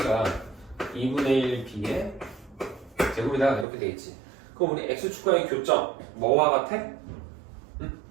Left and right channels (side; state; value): left; drops out; at 3.7 s